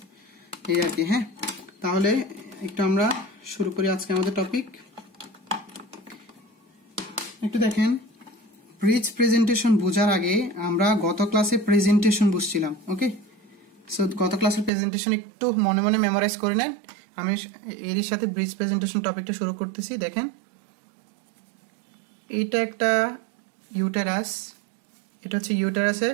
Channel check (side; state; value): left; drops out; at 14.7 s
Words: এই আর কি। হ্যাঁ, তাহলে একটু আমরা শুরু করি আজকে আমাদের টপিক। একটু দেখেন, ব্রিজ প্রেজেন্টেশন বোঝার আগে আমরা গত ক্লাসে প্রেজেন্টেশন বুঝছিলাম। ওকে, সো গত ক্লাসের প্রেজেন্টেশন একটু মনে মনে মেমোরাইজ করে নেন। আমি এরই সাথে ব্রিজ প্রেজেন্টেশন টপিকটা শুরু করতেছি। দেখেন, এটা একটা ইউটেরাস, এটা হচ্ছে ইউটেরাসের